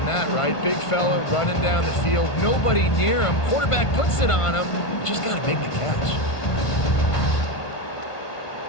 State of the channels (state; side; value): late; right; 1.5 ms